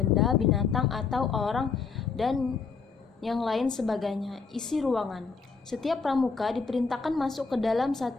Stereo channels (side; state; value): right; quieter; 5.0 dB